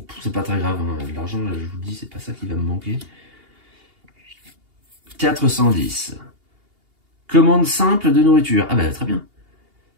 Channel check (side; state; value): left; late; 2.8 ms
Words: c'est pas très grave, hein. L'argent, je vous dis, c'est pas ça qui va me manquer. 410. Commande simple de nourriture. Ah bah très bien.